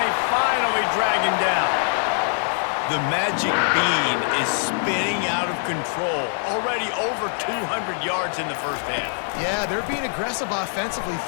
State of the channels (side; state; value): right; silent; digital silence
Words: finally drag him down. The magic bean is spinning out of control. Already over 200 yards in the first half. Yeah, they're being aggressive offensively,